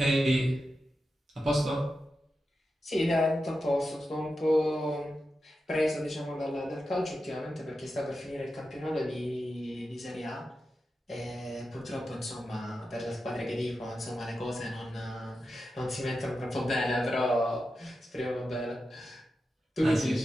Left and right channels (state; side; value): normal; both; correlation 0.90